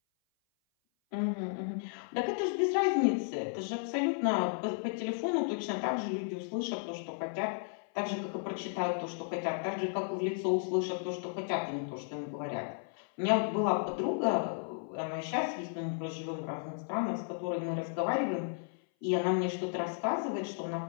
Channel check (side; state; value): right; silent; 55 dB below the other